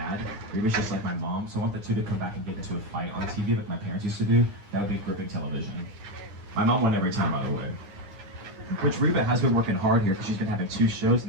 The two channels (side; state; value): left; late; 9.8 ms